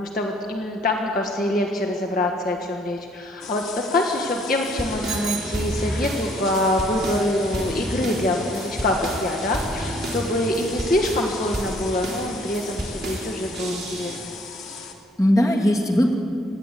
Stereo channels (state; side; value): normal; both; correlation 0.63